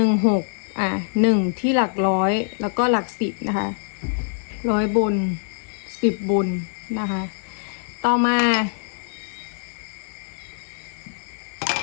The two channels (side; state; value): right; silent; digital silence